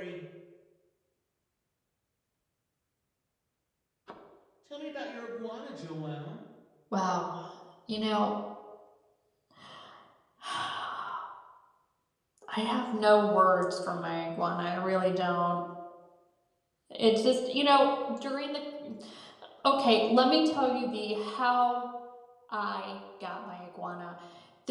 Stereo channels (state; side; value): identical; both; correlation 1.00